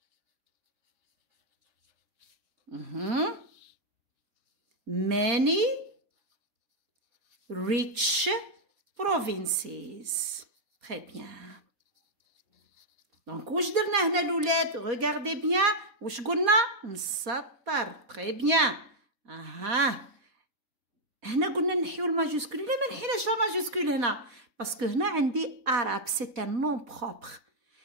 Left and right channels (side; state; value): left; late; 4.2 ms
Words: many rich provinces. très bien. دونك واش درنا هنا الولاد؟ regardez bien. واش قلنا؟ نسطر. très bien. هنا قلنا نحيو الماجوسكول. لا ما نحيناش الماجوسكول هنا، باسكو هنا عندي Arabe سي ان نون بروبر.